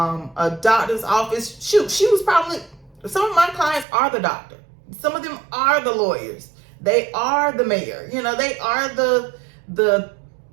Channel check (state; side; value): drops out; left; at 3.9 s